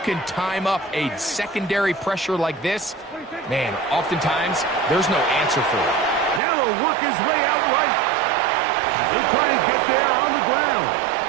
time up a secondary pressure like this, man, oftentimes there's no answer for it. Now he'll work his way out right. He'll try and get there on the ground.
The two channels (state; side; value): drops out; left; at 6.4 s